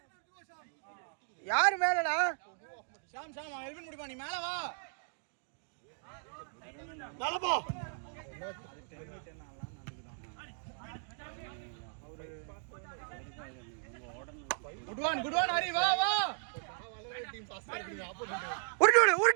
யார் மேலடா? ஷாம் எல்வின் முடிப்பா நீ மேல வா. நலபா குட் ஒன் ஹரி வா டீம் பாஸ் பண்ணிடுங்க. ஆப்போசிட் உருட்டி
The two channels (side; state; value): left; silent; digital silence